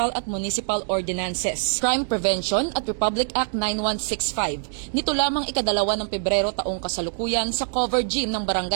at municipal ordinances, crime prevention at Republic Act 9165. Nito lamang ikadalawa ng Pebrero taong kasalukuyan sa cover gym ng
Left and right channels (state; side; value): silent; left; digital silence